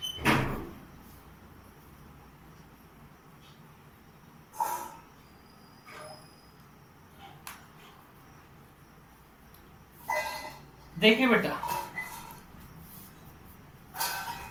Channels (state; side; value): identical; both; correlation 1.00